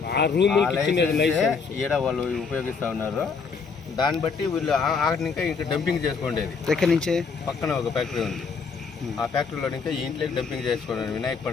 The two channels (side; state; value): right; quieter; 5.3 dB